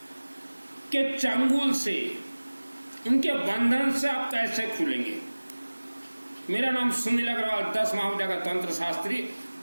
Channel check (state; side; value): inverted; both; correlation -1.00